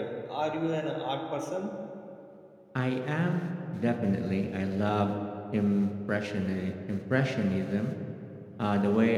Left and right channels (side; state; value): both; identical; correlation 1.00